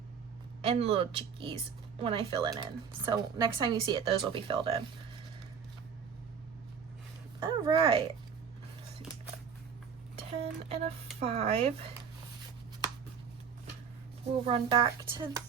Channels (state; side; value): quieter; left; 6.7 dB